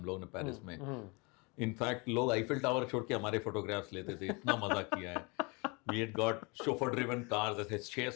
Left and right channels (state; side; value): quieter; right; 29.2 dB